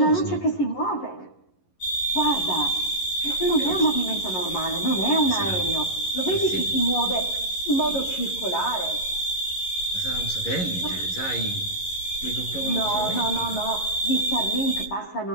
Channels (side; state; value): right; late; 11 ms